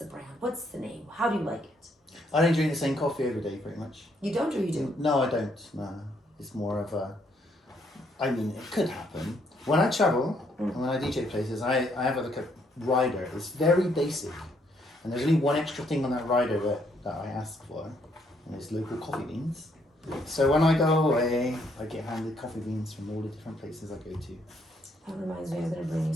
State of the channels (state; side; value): normal; both; correlation 0.71